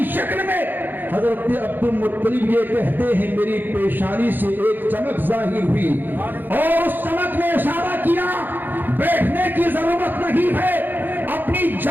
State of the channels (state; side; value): late; left; 0.090 ms